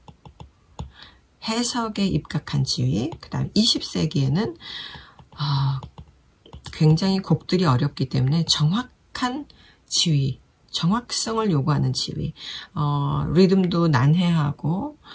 해석에 입각한 지휘. 그 다음 20세기에는 굉장히 곡들이 어렵기 때문에 정확한 지휘, 정확성을 요구하는 지휘. 리듬도 난해하고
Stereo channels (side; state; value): both; identical; correlation 1.00